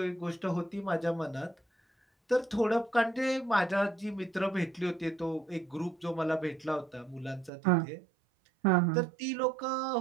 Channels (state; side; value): drops out; left; at 7.5 s